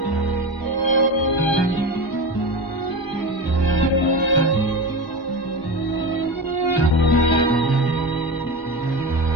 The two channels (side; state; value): right; late; 1.3 ms